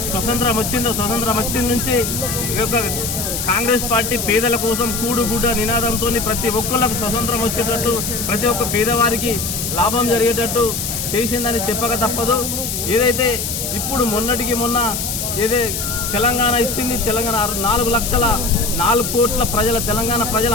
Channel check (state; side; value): noise; left; hiss, 3 dB below the sound